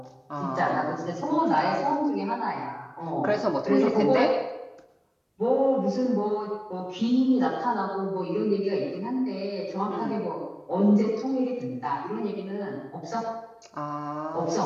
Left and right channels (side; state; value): both; identical; correlation 1.00